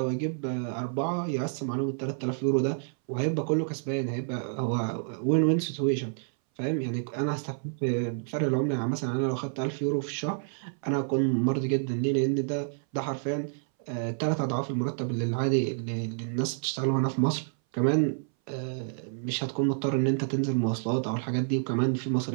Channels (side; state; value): left; silent; 59 dB below the other